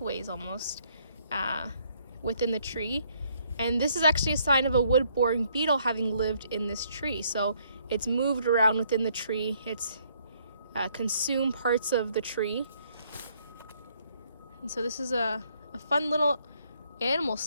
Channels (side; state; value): both; inverted; correlation -0.68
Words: almost within the tree. And this is actually a sign of a wood-boring beetle having lived in this tree. So it's moved around within the tree. It's consumed parts of the tree. And so this is a fun little animal